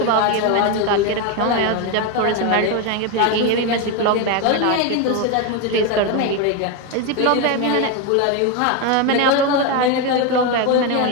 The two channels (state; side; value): different; both; correlation 0.02